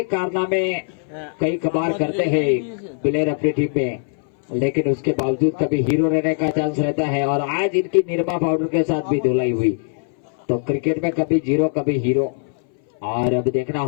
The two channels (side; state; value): right; silent; 60 dB below the other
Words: कारनामे कई कबार करते हैं प्लेयर अपनी टीम में, लेकिन उसके बावजूद कभी हीरो रहने का चांस रहता है। और आज इनकी निरमा पाउडर के साथ भी धुलाई हुई, तो क्रिकेट में कभी जीरो कभी हीरो। और अब देखना